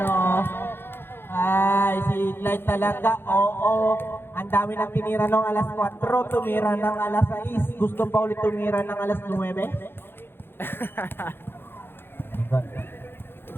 ay, si Clyde talaga. Oo, ang dami nang tinira ng alas 4, tumira ng alas 6. Gusto pa ulit tumira ng alas 9.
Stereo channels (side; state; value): right; late; 0.10 ms